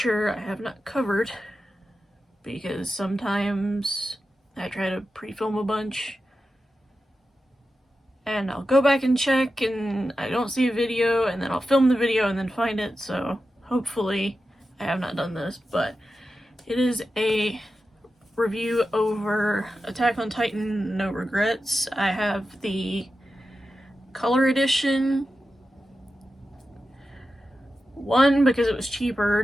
I have not covered because sometimes I try to pre-film a bunch and I'll go back and check and I don't see a video and then I'll film the video and then find it, so hopefully I have not done this, but it is a review over Attack on Titan No Regrets. I have the color edition. One, because it was cheaper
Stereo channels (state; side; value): normal; both; correlation 0.91